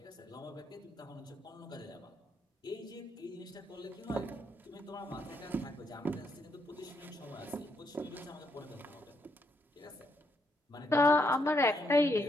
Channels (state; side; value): normal; both; correlation 0.76